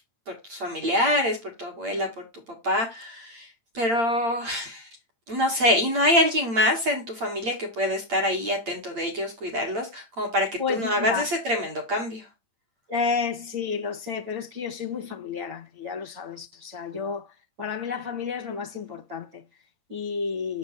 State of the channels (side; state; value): left; late; 8.7 ms